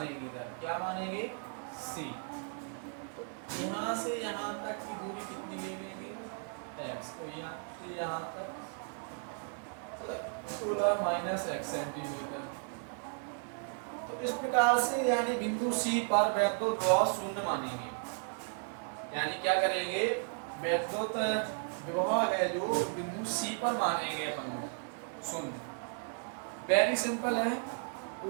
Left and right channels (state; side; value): silent; left; 54 dB below the other